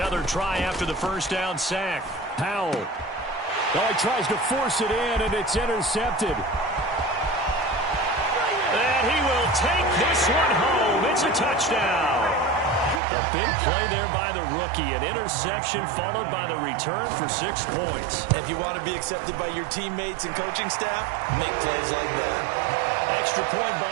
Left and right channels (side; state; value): left; drops out; at 13.0 s